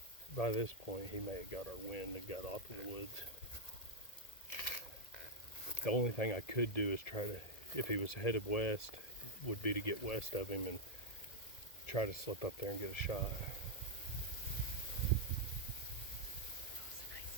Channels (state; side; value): late; right; 1.8 ms